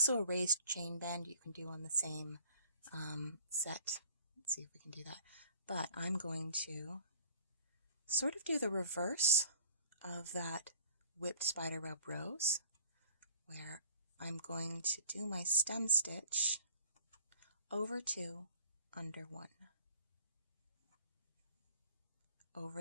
a raised chain bend you can do on the same set. Let's see if we can do that. But I'm going to sort of do the reverse of that whipped Spiderweb Rose, where I'm going to do my stem stitch over 2, under 1,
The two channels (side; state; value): both; inverted; correlation -0.53